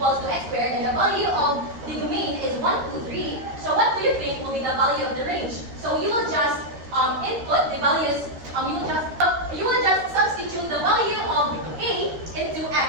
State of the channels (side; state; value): left; late; 13 ms